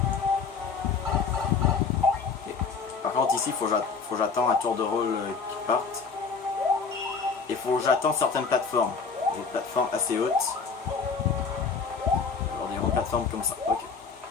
Et, par contre ici, faut que j'attends un tour de rôle qui parte. Et faut que j'attends certaines plateformes. Des plateformes assez hautes. Genre des grandes plateformes comme ça. Ok.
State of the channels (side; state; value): right; quieter; 5.2 dB